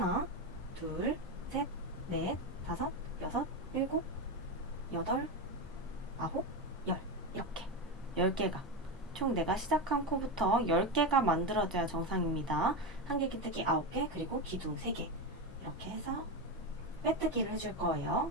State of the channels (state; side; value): normal; both; correlation 0.15